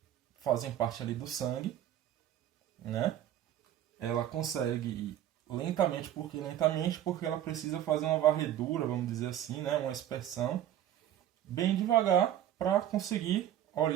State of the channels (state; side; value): quieter; left; 11.5 dB